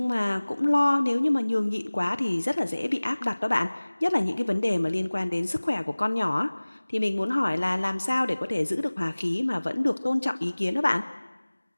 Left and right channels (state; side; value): inverted; both; correlation -1.00